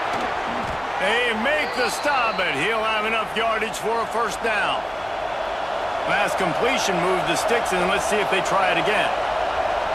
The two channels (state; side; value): noise; left; hum, 25 dB below the sound